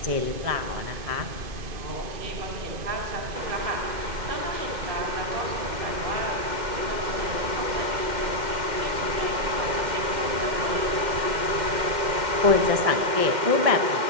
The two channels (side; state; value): left; late; 2.1 ms